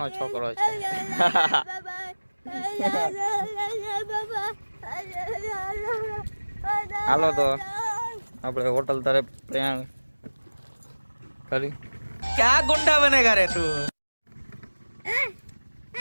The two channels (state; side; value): inverted; both; correlation -1.00